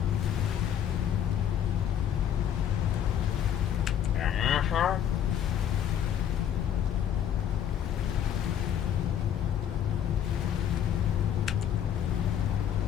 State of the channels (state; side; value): quieter; right; 9.5 dB